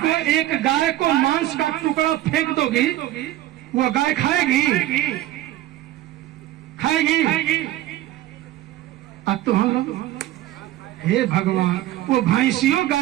एक गाय को मांस का टुकड़ा फेंक दोगी, वो गाय खाएगी? खाएगी? अब तो हम लोग, हे भगवान, वो भैंसियों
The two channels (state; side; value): quieter; left; 14.6 dB